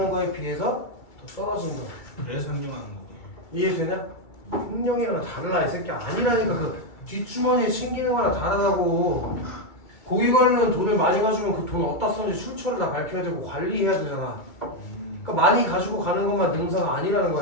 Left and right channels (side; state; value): right; late; 2.3 ms